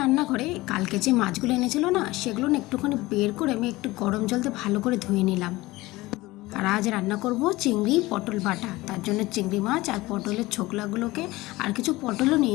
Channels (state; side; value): quieter; right; 19.7 dB